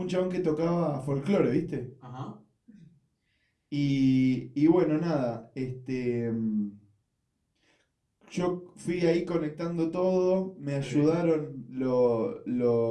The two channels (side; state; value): both; identical; correlation 1.00